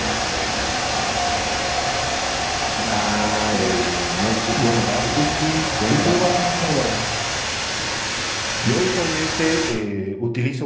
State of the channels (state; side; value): identical; both; correlation 1.00